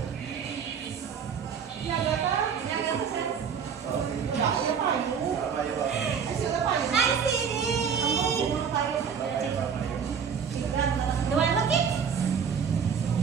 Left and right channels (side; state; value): left; quieter; 6.9 dB